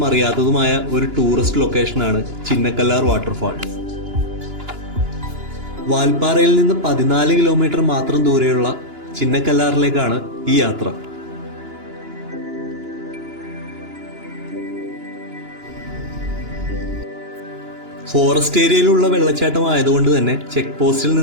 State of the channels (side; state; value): left; late; 2.9 ms